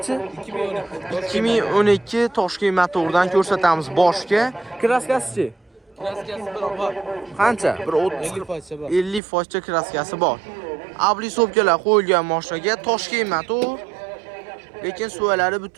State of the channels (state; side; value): drops out; left; at 9.2 s